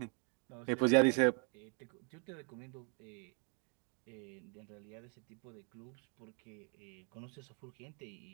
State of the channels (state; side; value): quieter; left; 38.5 dB